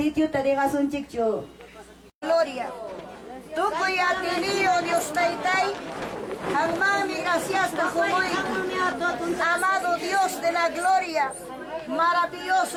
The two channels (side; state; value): both; identical; correlation 1.00